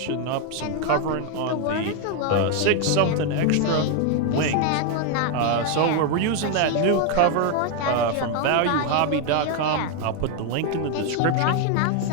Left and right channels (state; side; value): different; both; correlation 0.01